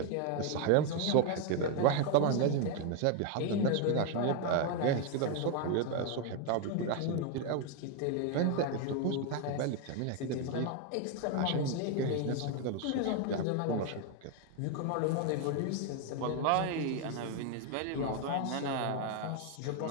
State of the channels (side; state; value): both; different; correlation 0.01